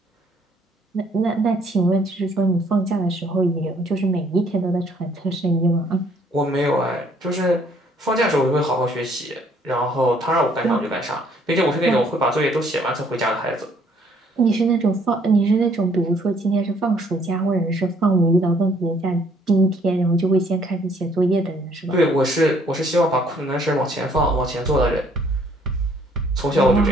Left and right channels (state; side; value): normal; both; correlation 0.63